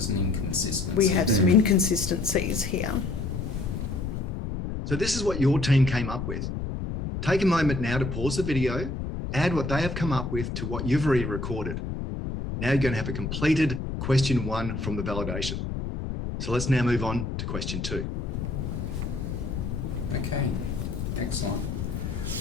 an inconsistency. We have some inconsistencies here. So this is what your team came up with. Take a moment now to pause the video, add what they have come up with to what you've already recorded. Now you're going to have a completed question 1 from the validation. So let's now move on to question 2. Okay, excellent.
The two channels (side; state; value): left; noise; rumble, 4 dB below the sound